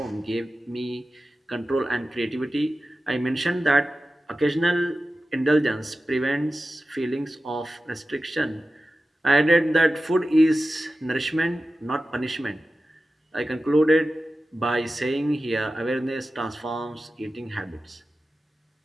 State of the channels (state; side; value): normal; both; correlation 0.94